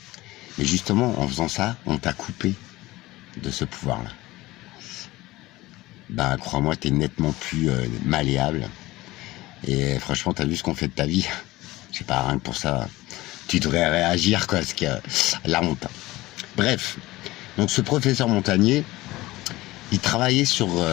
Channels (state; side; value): quieter; right; 18.8 dB